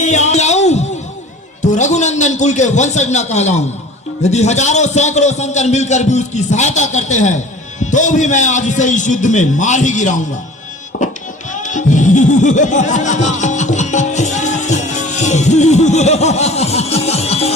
तो रघुनंदन कुल के वंशज न कहलाऊं। यदि हजारों सैकड़ों शंकर मिलकर भी उसकी सहायता करते हैं तो भी मैं आज उसे इस युद्ध में मार ही गिराऊंगा।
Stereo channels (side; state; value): both; normal; correlation 0.43